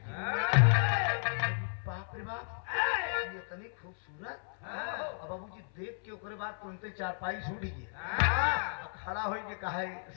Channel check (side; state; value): right; silent; 55 dB below the other